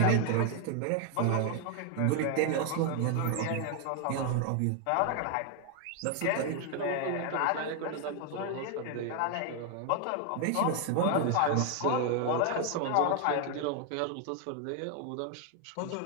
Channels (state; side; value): different; both; correlation 0.00